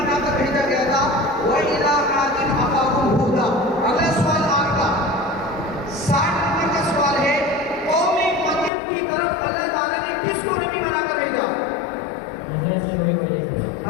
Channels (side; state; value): right; drops out; at 8.7 s